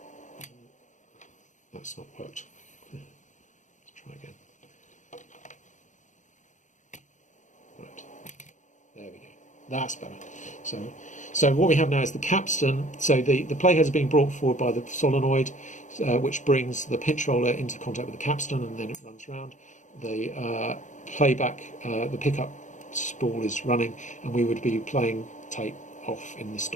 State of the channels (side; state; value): right; late; 0.36 ms